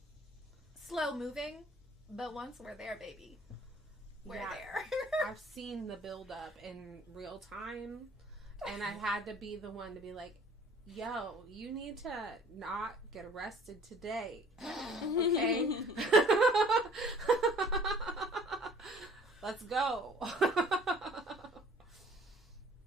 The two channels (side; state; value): both; normal; correlation 0.53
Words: slow moving, but once we're there, baby, we're there. I've seen the build up in real time, and I had to be the one to be like, yo, you need to not get arrested today. Okay? Let's go.